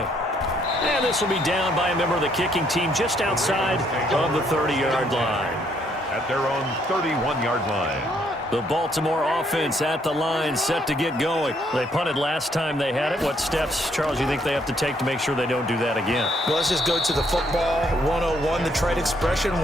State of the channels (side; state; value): both; normal; correlation 0.70